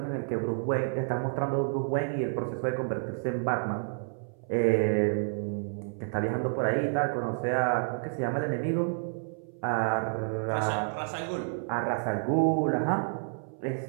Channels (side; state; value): left; silent; 58 dB below the other